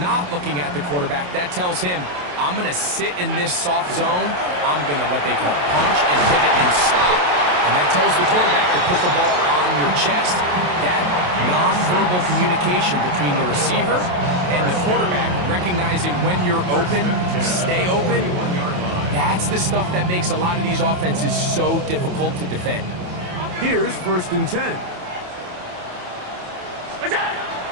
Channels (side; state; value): left; late; 28 ms